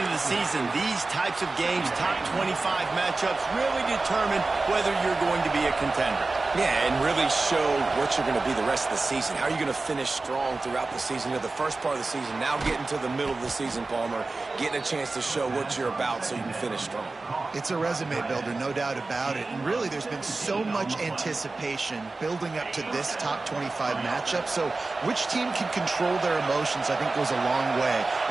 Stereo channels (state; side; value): quieter; left; 3.5 dB